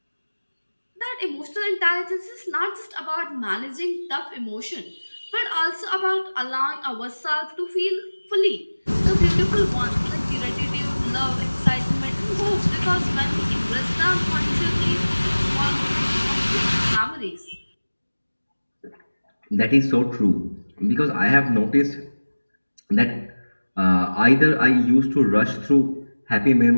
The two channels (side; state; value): both; inverted; correlation -1.00